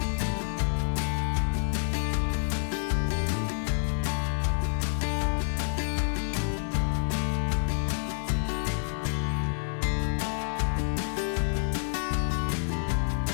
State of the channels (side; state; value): right; silent; 59 dB below the other